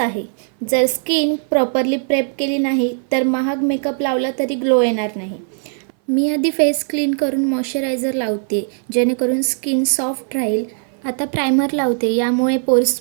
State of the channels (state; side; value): silent; left; 59 dB below the other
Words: जर स्किन प्रॉपरली प्रेप केली नाही तर महाग मेकअप लावला तरी ग्लो येणार नाही. मी आधी फेस क्लीन करून मॉइश्चरायझर लावते, जेणेकरून स्किन सॉफ्ट राहील. आता प्रायमर लावते, यामुळे पोर्स